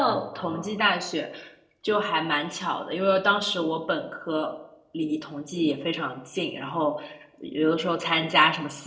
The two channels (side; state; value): both; identical; correlation 1.00